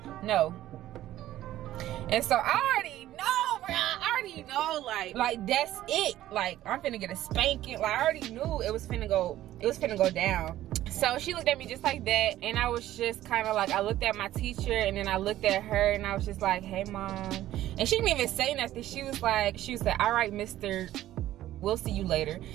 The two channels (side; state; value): left; quieter; 13.8 dB